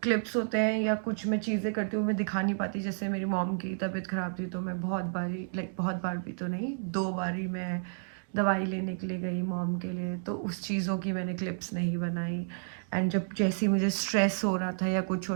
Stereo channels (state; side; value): silent; left; digital silence